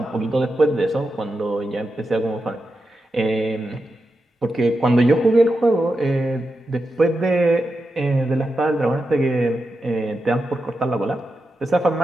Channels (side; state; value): both; normal; correlation 0.88